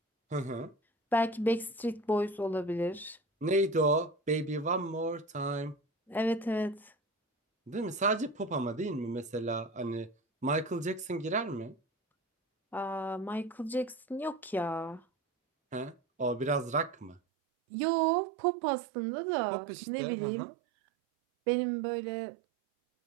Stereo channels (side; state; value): left; drops out; at 17.2 s